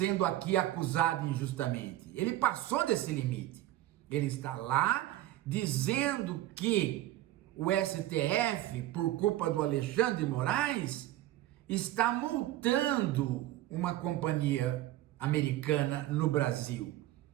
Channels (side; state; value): left; quieter; 14.8 dB